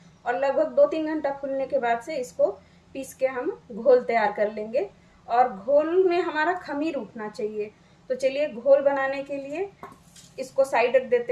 और लगभग 2-3 घंटा फूलने के बाद से इसको पीस के हम घोल तैयार कर लेंगे। और घोल में हमारा खमीर उठना चाहिए। तो चलिए घोल बनाने के लिए इसको साइड रख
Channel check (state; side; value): identical; both; correlation 1.00